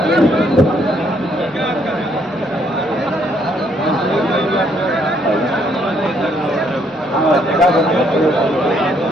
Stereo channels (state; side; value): normal; both; correlation 0.69